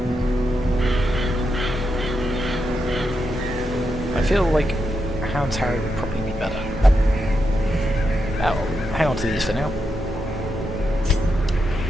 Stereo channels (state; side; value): normal; both; correlation 0.85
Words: I feel like a Hound's Harry would probably be better. Oh, hang on to these for now.